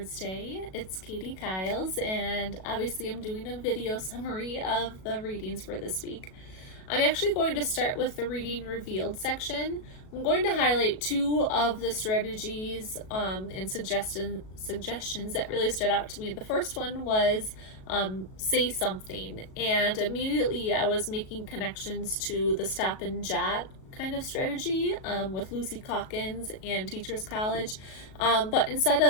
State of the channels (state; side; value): late; right; 37 ms